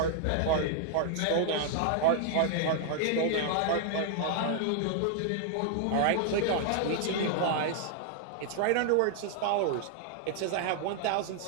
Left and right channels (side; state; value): both; different; correlation 0.00